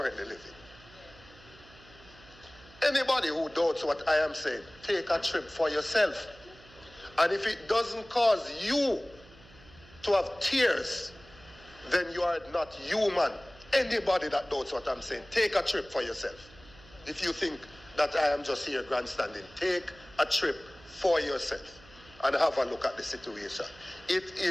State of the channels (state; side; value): noise; right; hum, 23 dB below the sound